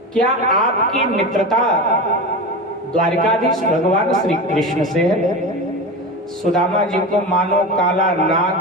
क्या आपकी मित्रता द्वारिकाधीश भगवान श्री कृष्ण से है? सुदामा जी को मानो काला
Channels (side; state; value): both; normal; correlation 0.25